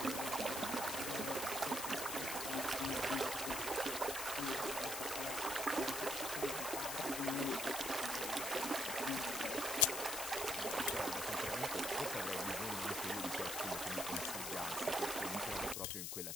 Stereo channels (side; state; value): left; noise; hiss, 3 dB below the sound